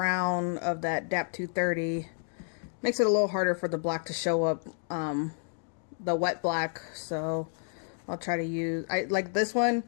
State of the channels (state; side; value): silent; right; 58 dB below the other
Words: of that PT.2 makes it a little harder for the black to show up, the wet black, so I'll try to use, like this one,